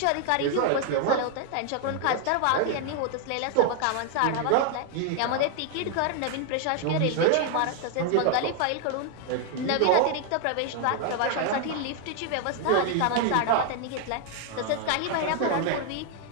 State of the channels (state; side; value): different; both; correlation 0.00